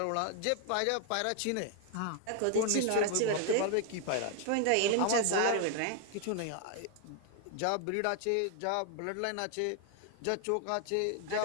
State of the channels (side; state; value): both; different; correlation 0.00